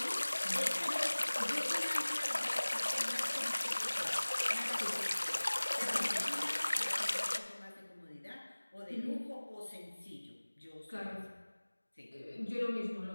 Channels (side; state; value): both; inverted; correlation -1.00